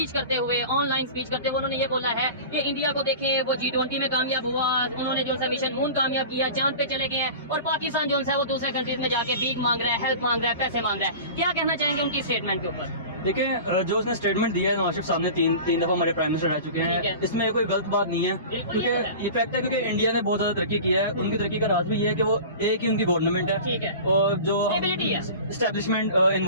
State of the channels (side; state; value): both; inverted; correlation -0.36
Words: करते हुए, ऑनलाइन स्पीच करते हुए उन्होंने ये बोला है कि इंडिया को देखें, वो G20 में कामयाब हुआ, उन्होंने जो है मिशन मून कामयाब किया, चांद पे चले गए हैं, और पाकिस्तान जो है वो दूसरे कंट्रीज में जाके भीख मांग रहा है, हेल्प मांग रहा है, पैसे मांग रहा है। क्या कहना चाहेंगे उनकी स्टेटमेंट के ऊपर? देखिए, जो उसने स्टेटमेंट दिया है नवाज शरीफ साहब ने, तीन दफा हमारे प्राइम मिनिस्टर रह चुके ठीक हैं, है। इसमें कोई गलत बात नहीं है, बिल्कुल क्योंकि ये तो है। ये फैक्ट है, क्योंकि इंडिया ने बहुत ज्यादा तरक्की की है। उनकी तरक्की का राज भी ये है कि वो एक ही उनकी गवर्नमेंट है, ठीक है, और जो स्टेबिलिटी है। एस्टेब्लिशमेंट